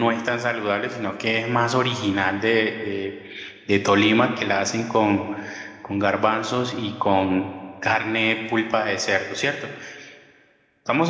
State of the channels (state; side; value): identical; both; correlation 1.00